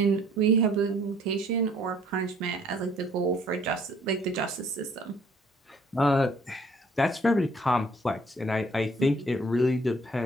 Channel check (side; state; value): both; normal; correlation 0.59